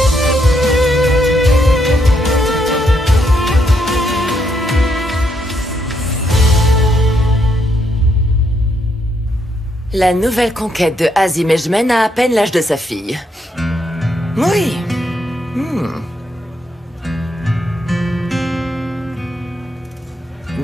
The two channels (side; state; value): both; normal; correlation 0.77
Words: La nouvelle conquête de Azim Ejmen a à peine l'âge de sa fille. Oui.